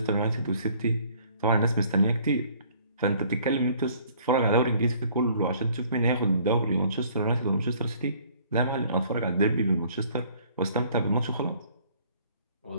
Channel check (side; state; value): both; inverted; correlation -0.58